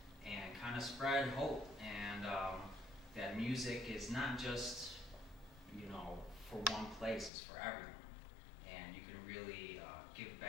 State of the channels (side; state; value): right; drops out; at 7.3 s